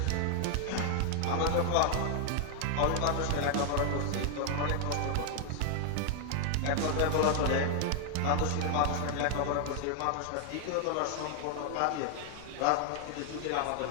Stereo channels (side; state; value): both; different; correlation 0.00